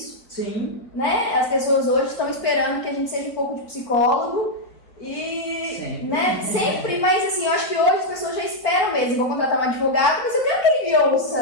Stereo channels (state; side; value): late; right; 4.0 ms